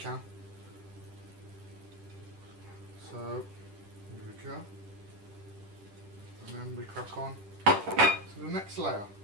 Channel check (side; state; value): left; late; 10 ms